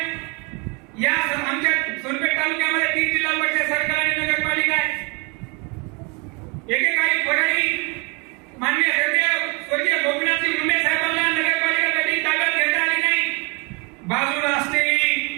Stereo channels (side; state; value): left; quieter; 30.9 dB